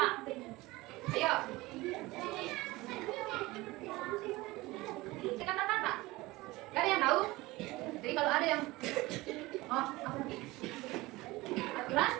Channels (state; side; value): quieter; left; 20.4 dB